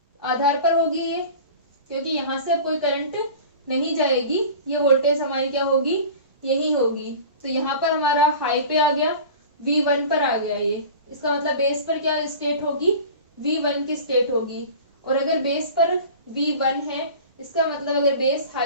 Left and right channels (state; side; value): inverted; both; correlation -0.38